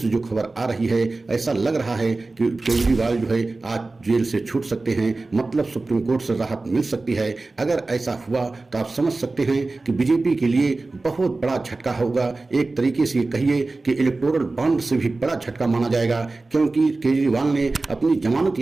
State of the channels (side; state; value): left; quieter; 3.4 dB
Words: जो खबर आ रही है, ऐसा लग रहा है कि केजरीवाल जो है आज जेल से छूट सकते हैं, मतलब सुप्रीम कोर्ट से राहत मिल सकती है। अगर ऐसा हुआ तो आप समझ सकते हैं कि बीजेपी के लिए बहुत बड़ा झटका होगा। एक तरीके से कहिए कि इलेक्टोरल बॉन्ड से भी बड़ा झटका माना जाएगा, क्योंकि केजरीवाल ने अपनी जमानत